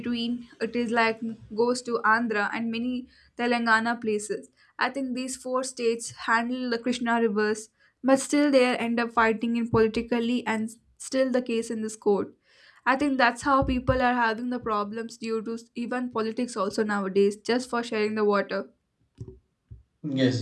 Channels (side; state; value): both; identical; correlation 1.00